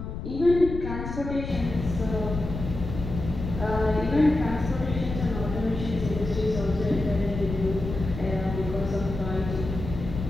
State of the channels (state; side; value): noise; left; rumble, 7 dB below the sound